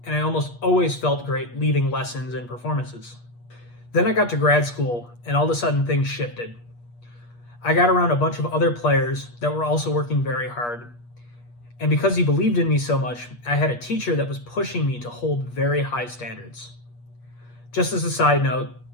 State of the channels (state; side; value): late; right; 8.4 ms